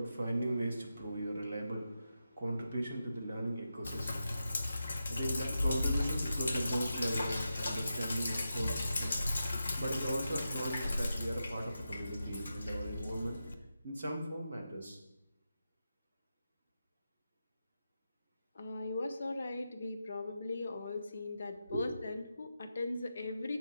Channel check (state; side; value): inverted; both; correlation -0.89